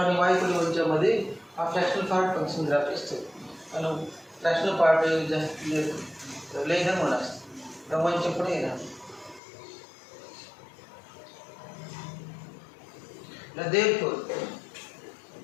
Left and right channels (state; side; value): drops out; right; at 9.4 s